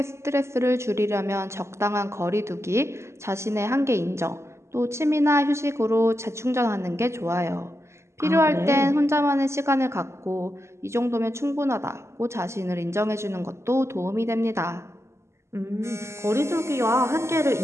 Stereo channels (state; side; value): late; left; 0.13 ms